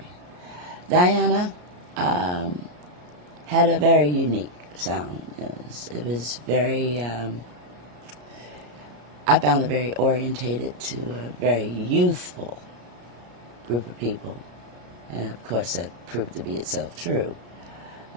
Diana had a very unique sound. It was very, I found it very orientated to a very youthful group of people. And of course that proved to be itself true.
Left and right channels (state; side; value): late; left; 34 ms